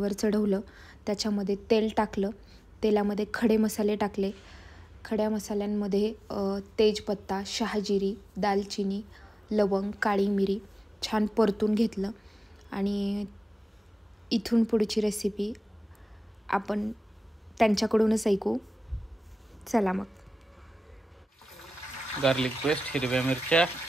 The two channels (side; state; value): both; normal; correlation 0.96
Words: चढवलं. त्याच्यामध्ये तेल टाकलं. तेलामध्ये खडे मसाले टाकले. खड्या मसाल्यांमध्ये तेजपत्ता, शहाजिरी, दालचिनी, लवंग, काळी मिरी छान परतून घेतलं. आणि इथून पुढची रेसिपी आपण त्यांच्याकडूनच ऐकू. चला मग. गार्लिक पेस्ट, हिरव्या मिरच्या,